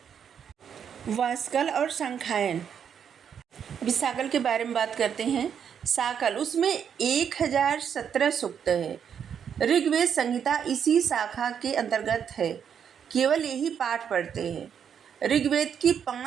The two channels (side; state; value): left; quieter; 7.9 dB